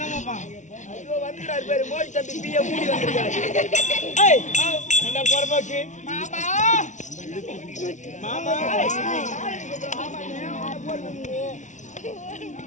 வந்துக்கிறாரு பேரு மோடி தம்பி பிஏ மூடி வந்துருக்காரு. என்ன பொறம்போக்கு மாமா மாமா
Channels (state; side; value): late; right; 0.36 ms